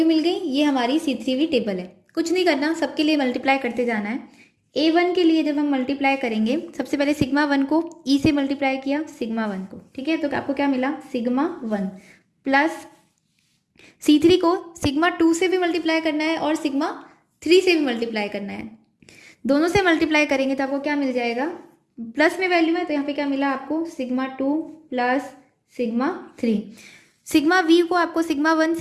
मिल गई, ये हमारी C3V टेबल है। कुछ नहीं करना, सबके लिए मल्टीप्लाई करते जाना है। A1 के लिए जब हम मल्टीप्लाई करेंगे, सबसे पहले सिग्मा 1 को E से मल्टीप्लाई किया, सिग्मा 1 को, ठीक है। तो आपको क्या मिला, सिग्मा 1 प्लस C3 को सिग्मा 2 से भी मल्टीप्लाई करना है और सिग्मा 3 से भी मल्टीप्लाई करना है। दोनों से मल्टीप्लाई करेंगे तो आपको क्या मिल जाएगा, प्लस में वैल्यू है तो यहाँ पे क्या मिला आपको, sigma 2 plus sigma 3। Sigma we को आपको सिग्मा 1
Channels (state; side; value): identical; both; correlation 1.00